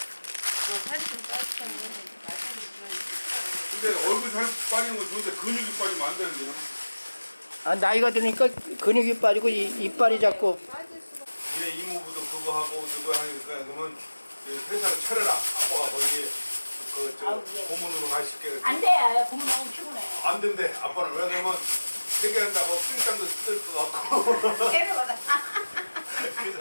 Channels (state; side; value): inverted; both; correlation -1.00